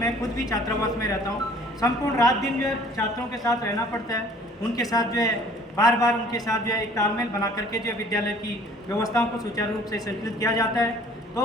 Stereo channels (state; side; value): normal; both; correlation 0.53